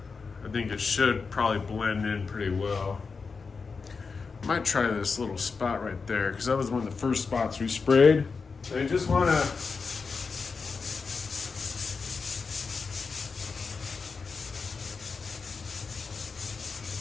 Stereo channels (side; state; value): right; quieter; 4.9 dB